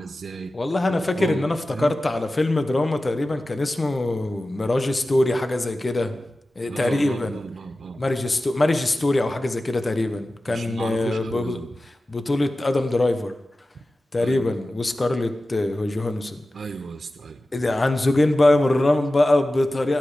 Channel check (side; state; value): both; normal; correlation 0.95